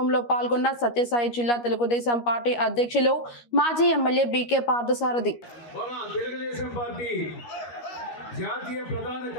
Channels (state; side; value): late; right; 13 ms